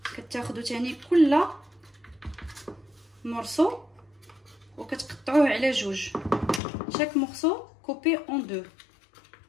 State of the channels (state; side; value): drops out; right; at 6.6 s